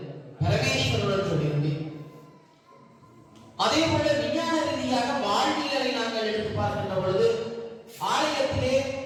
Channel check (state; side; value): identical; both; correlation 1.00